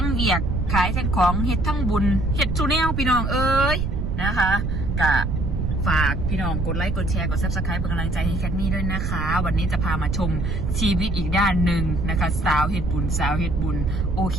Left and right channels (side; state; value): right; noise; rumble, 1 dB below the sound